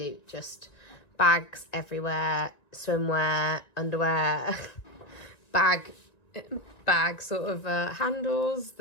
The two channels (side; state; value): right; late; 1.9 ms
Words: just bags everywhere. Swimwear, underwear. bag sort of handles.